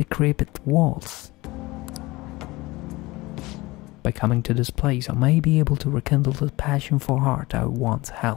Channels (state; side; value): quieter; right; 21.1 dB